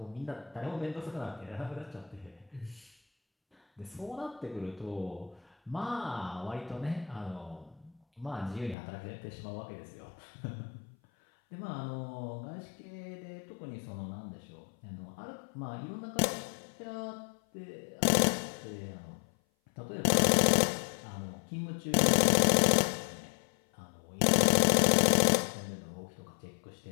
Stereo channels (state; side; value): drops out; right; at 8.8 s